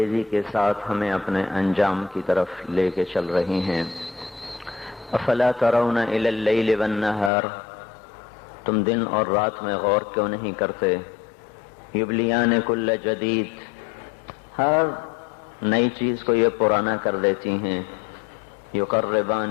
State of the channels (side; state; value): right; drops out; at 7.3 s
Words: کے ساتھ ہمیں اپنے انجام کی طرف لے کے چل رہی ہیں۔ افلا ترون الی اللیل والنہار، تم دن اور رات میں غور کیوں نہیں کرتے؟ یبلیان کل جدید، ہر نئی چیز کو یہ پرانا کر دیتی ہیں۔